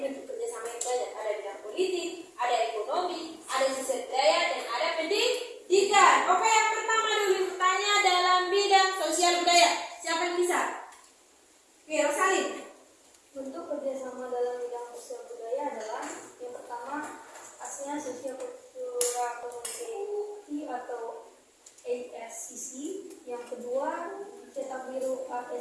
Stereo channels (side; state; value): both; identical; correlation 1.00